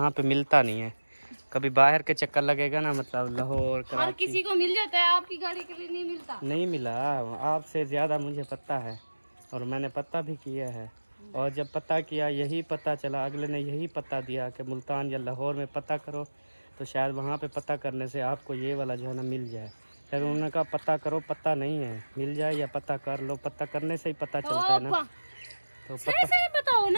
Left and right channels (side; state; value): both; inverted; correlation -1.00